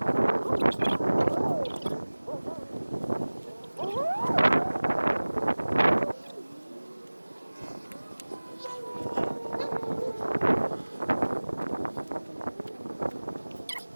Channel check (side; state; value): both; inverted; correlation -1.00